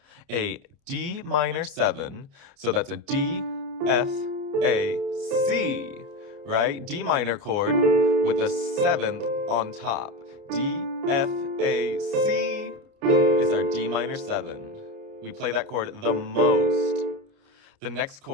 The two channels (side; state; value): left; late; 29 ms